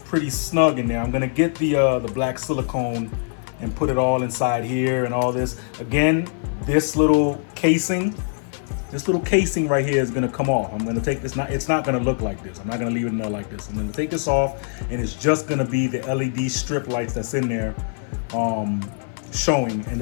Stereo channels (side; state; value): right; silent; 57 dB below the other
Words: pretty snug in there. I'm gonna get the black silicone and put it all inside here and all this. Again, this little casing right here is gonna come off. I'm gonna take this, it's not gonna look like this. I'm not gonna leave it in there like this. I'm gonna take this off, and it's just gonna be the LED strip lights that's in there showing. And